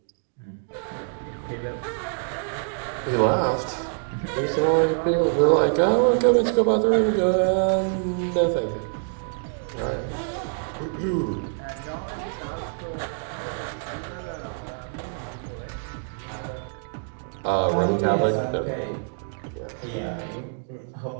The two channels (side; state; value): left; silent; 61 dB below the other